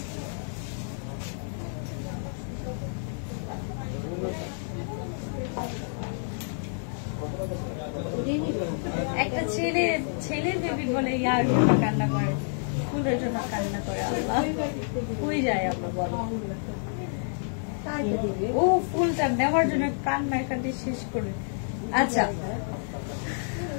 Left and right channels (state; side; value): silent; right; 59 dB below the other